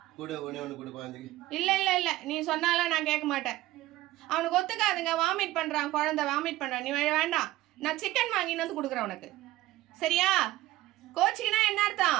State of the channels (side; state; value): left; quieter; 16.7 dB